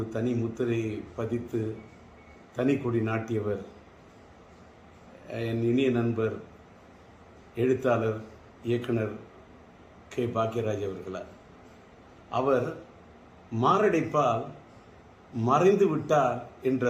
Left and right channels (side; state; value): both; identical; correlation 1.00